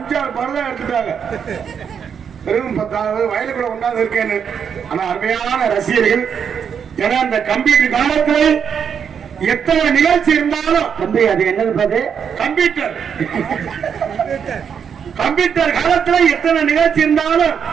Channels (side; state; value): left; quieter; 7.3 dB